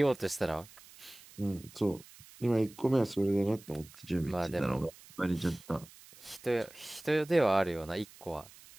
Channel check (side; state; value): right; noise; hiss, 21 dB below the sound